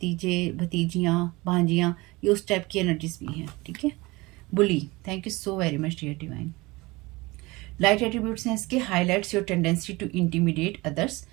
भतीजियाँ भांजियाँ, ये उस टाइप की एनर्जीज भी हैं। ठीक है bully, thank you so very much dear divine. Light attributes हैं इसके, highlights your tendency to intimidate others,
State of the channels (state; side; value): quieter; left; 22.6 dB